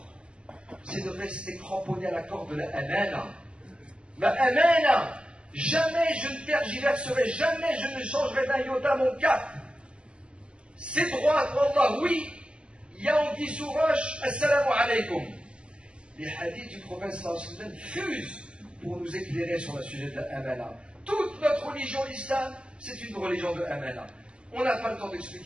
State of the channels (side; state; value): left; late; 0.052 ms